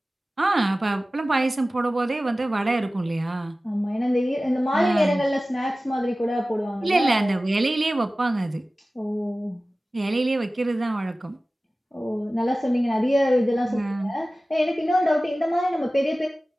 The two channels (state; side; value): normal; both; correlation 0.96